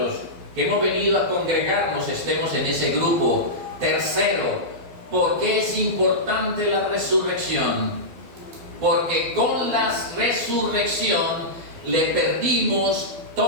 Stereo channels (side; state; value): left; late; 12 ms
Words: que hemos venido a congregarnos estemos en ese grupo. Tercero, ¿por qué es importante la resurrección? Porque con la resurrección le perdimos